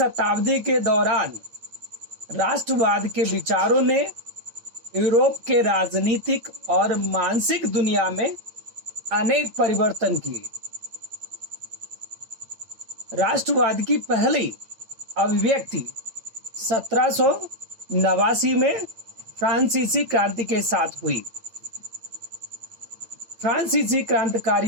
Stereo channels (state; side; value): late; left; 8.9 ms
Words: के दौरान राष्ट्रवाद के विचारों ने यूरोप के राजनीतिक और मानसिक दुनिया में अनेक परिवर्तन किए। राष्ट्रवाद की पहली अभिव्यक्ति 1789 में फ्रांसीसी क्रांति के साथ हुई। फ्रांसीसी